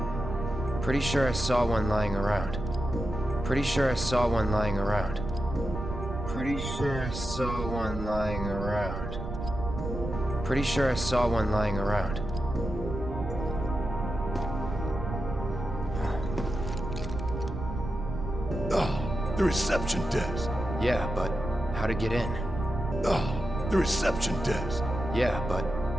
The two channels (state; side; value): noise; right; rumble, 6 dB below the sound